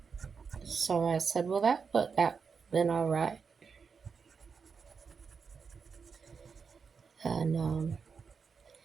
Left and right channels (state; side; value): quieter; left; 5.7 dB